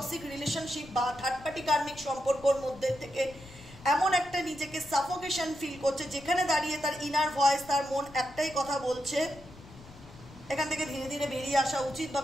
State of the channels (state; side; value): noise; left; rumble, 19 dB below the sound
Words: রিলেশনশিপ বা থার্ড পার্টি কার্মিক সম্পর্কর মধ্যে থেকে এমন একটা নিজেকে সাফোকেশন ফিল করছে, যেখানে দাঁড়িয়ে তার ইনার ভয়েস, তার মন একটাই কথা বলছে, এখান থেকে ধীরে ধীরে বেরিয়ে আসা উচিত। বা